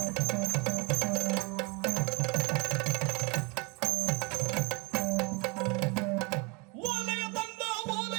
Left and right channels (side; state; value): left; quieter; 28.9 dB